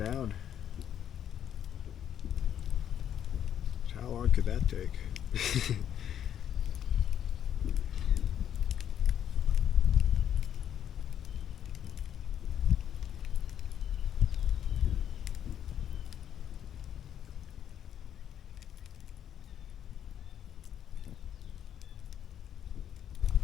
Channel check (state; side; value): quieter; right; 9.7 dB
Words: How long could that take?